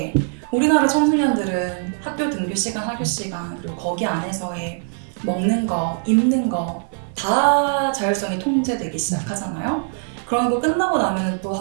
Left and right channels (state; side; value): silent; left; 65 dB below the other